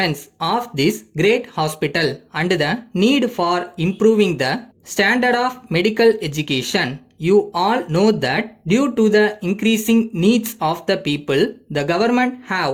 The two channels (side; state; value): both; identical; correlation 1.00